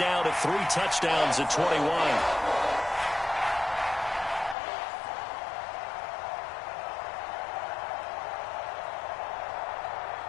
now to 3 touchdowns at 21.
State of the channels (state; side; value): drops out; right; at 4.5 s